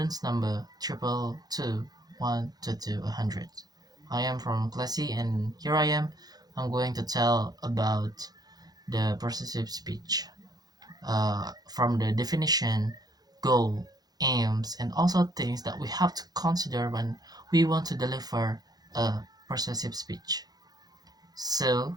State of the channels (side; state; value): left; late; 0.19 ms